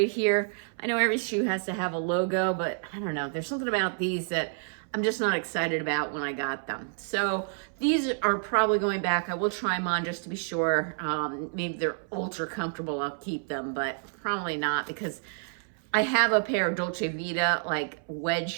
here. I know every shoe has to have a logo, but I don't know. There's something about these that I'm just not excited about when I got them. So these are probably going back. I will try them on just to be sure. Maybe they're ultra comfortable. I'll keep them, but probably not, because I have a pair of Dolce Vita like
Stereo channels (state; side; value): silent; left; 59 dB below the other